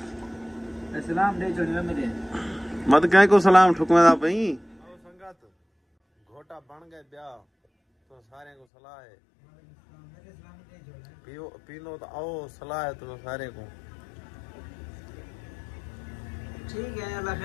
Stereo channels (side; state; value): right; drops out; at 8.7 s